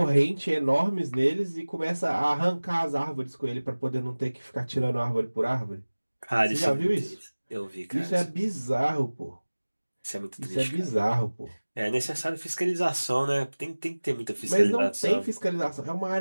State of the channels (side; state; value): both; inverted; correlation -1.00